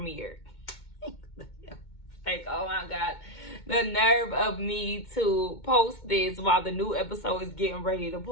Like, oh my God, the nerve of me to post this while the new episode is getting ready to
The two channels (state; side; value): late; right; 2.2 ms